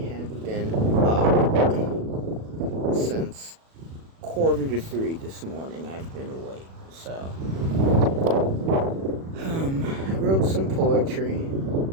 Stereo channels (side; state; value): left; late; 37 ms